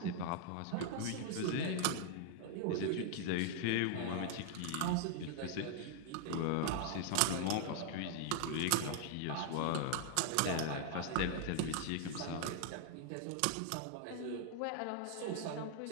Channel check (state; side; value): different; both; correlation -0.01